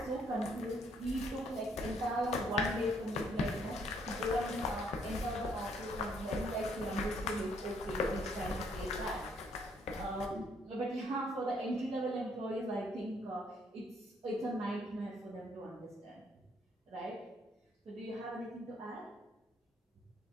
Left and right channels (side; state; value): both; normal; correlation 0.68